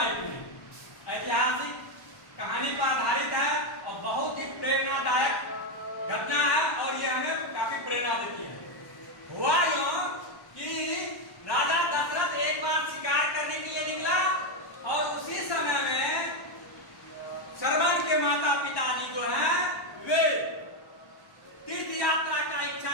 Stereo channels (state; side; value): late; right; 1.1 ms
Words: में। ऐतिहासिक कहानी पर आधारित है और बहुत ही प्रेरणादायक घटना है और ये हमें काफी प्रेरणा देती है। हुआ यूं कि राजा दशरथ एक बार शिकार करने के लिए निकला और उसी समय में श्रवण के माता पिताजी जो हैं वे तीर्थ यात्रा का